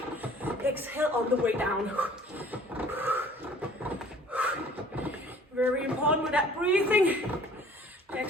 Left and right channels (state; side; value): normal; both; correlation 0.52